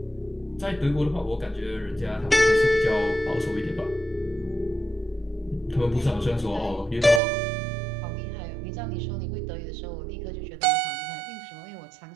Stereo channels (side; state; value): left; drops out; at 7.2 s